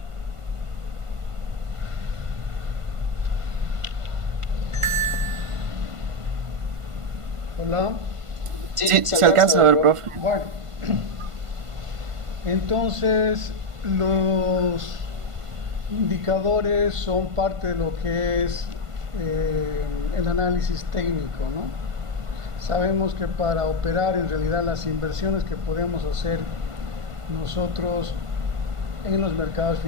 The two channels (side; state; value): left; late; 1.5 ms